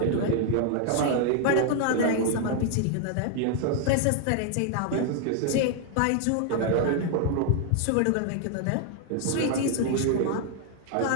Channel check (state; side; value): different; both; correlation 0.00